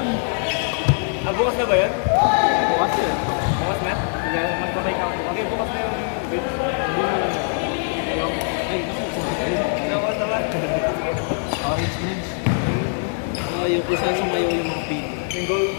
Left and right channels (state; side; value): silent; right; 56 dB below the other